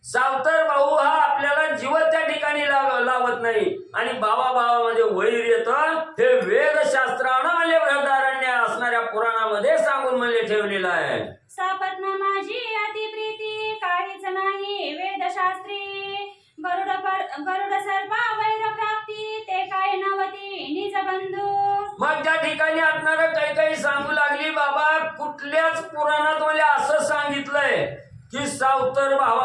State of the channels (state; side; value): identical; both; correlation 1.00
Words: सावतर भाऊ हा आपल्याला जीवन त्या ठिकाणी लावत नाही आणि भावामध्ये वैर येतं. हे वेदशास्त्रानं म्हणजे बृहदारण्य असणाऱ्या पुराणामध्ये सांगून म्हणजे ठेवलेलं आहे. सापत्न माझी अतिप्रीती काहीच नाही वेदशास्त्री, गरुड सर्पा वैर प्राप्ती ते काय नवती निज बंधू. मग त्या ठिकाणी असणार काही सांगू लागली बाबा कुठल्याच पुराणात मला असं सांगितलंय की सावतर